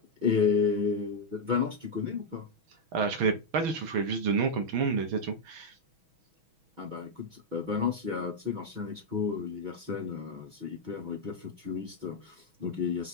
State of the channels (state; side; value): late; left; 6.2 ms